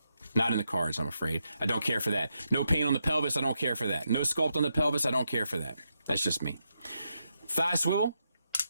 Not in the cards, I'm afraid. I don't care for that. No paint on the pelvis, I don't care for that. No sculpt on the pelvis, I don't care for that. That's just me. Thigh swivel.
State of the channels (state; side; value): inverted; both; correlation -0.83